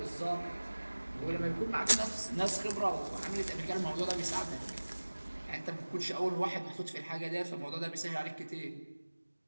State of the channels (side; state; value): both; inverted; correlation -1.00